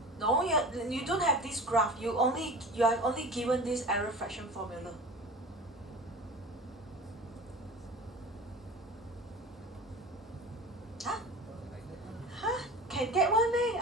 No, you don't have this graph. You are only given this error fraction formula. Can get one day?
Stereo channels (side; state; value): both; normal; correlation 0.36